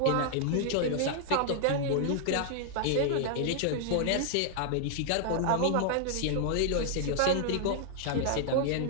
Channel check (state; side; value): different; both; correlation 0.00